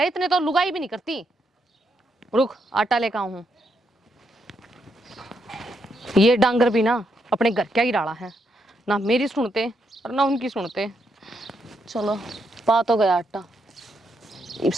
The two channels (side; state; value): both; normal; correlation 0.79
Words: इतने तो लुगाई भी नहीं करती। रुक आटा लेकर आऊं हूं। ये डांगर भी ना अपने घर क्या ही डाला है, ना मेरी सुनते और ना उनकी सुनते। चलो पा तो गया आटा, इब